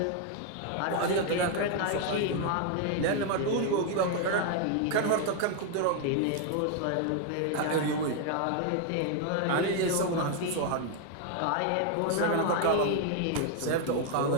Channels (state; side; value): different; both; correlation 0.00